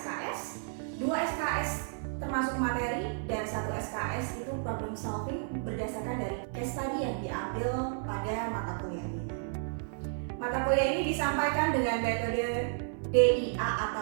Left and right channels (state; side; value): silent; left; 56 dB below the other